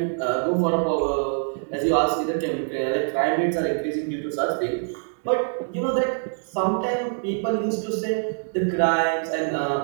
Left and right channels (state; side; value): silent; left; 62 dB below the other